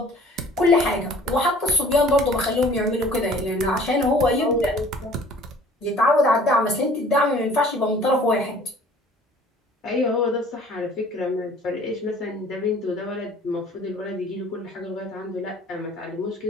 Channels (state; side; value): normal; both; correlation 0.52